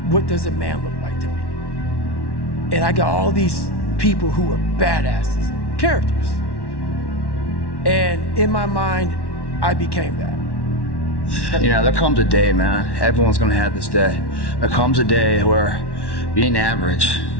what does a man look like to me? And I got all these people who were badasses, characters. And in my mind, I became that. You know, there comes a day, man, everyone's gonna have this day. There comes a day where being average,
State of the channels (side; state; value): right; late; 1.1 ms